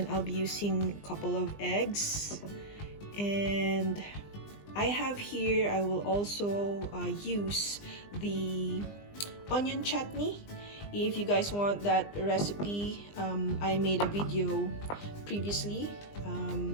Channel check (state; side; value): late; right; 20 ms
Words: I'll be using a couple of eggs. And I have here, I will also use the onion chutney. If you guys want that recipe, I made a video previously.